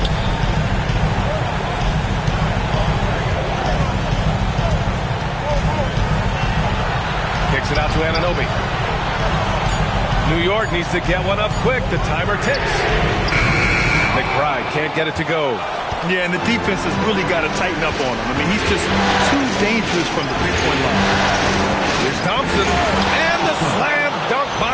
Kicks it out to Anunoby. New York needs to get one up quick. The timer ticks. McBride can't get it to go. Yeah, and the defense has really got to tighten up on him. I mean, he's just too dangerous from the three-point line. Here's Thompson, and the slam dunk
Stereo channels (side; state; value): both; identical; correlation 1.00